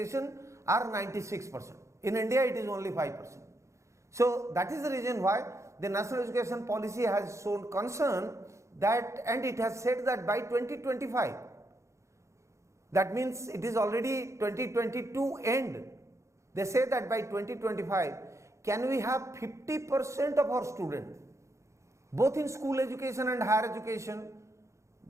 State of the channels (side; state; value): left; late; 0.14 ms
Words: are 96%. In India, it is only 5%. So that is the reason why the national education policy has shown concern that, and it has said that by 2025, that means it is already 2022 end. They say that by 2025, can we have 50% of our students, both in school education and higher education,